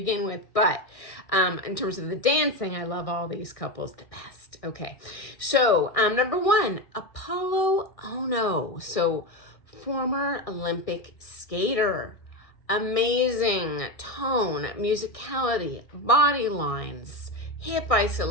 with. But in terms of the dancing, I love all these couples the best. Okay. So number 1, Apollo Ono. So former Olympic skater. Amazing tone, musicality, body lines, hip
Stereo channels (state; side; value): late; right; 1.6 ms